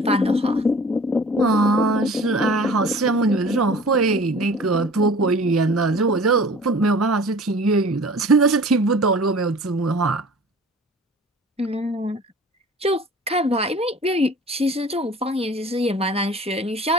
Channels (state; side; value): normal; both; correlation 0.45